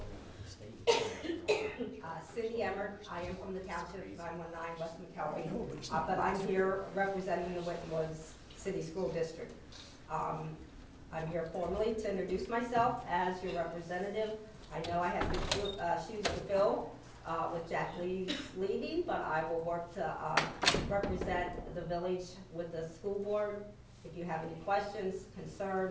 over the state. Cindy Emmert, I am from the township, 919 West McKelvey, but I'm here representing the Winton Woods City School District. I'm here formally to introduce myself as your representative. I know I have big shoes to fill with Jack Lee's leaving, but I will work to represent the village with the school board. If you have any questions,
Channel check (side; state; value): both; identical; correlation 1.00